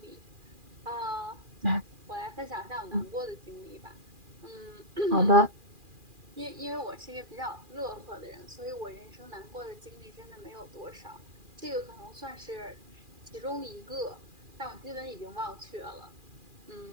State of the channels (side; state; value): left; late; 2.4 ms